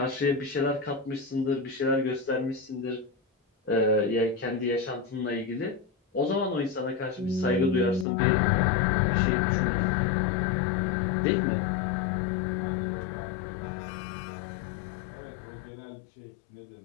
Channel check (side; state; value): right; drops out; at 8.1 s